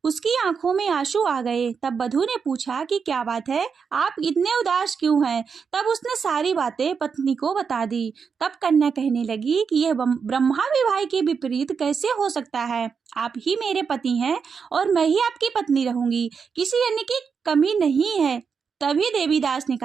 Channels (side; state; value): left; quieter; 6.0 dB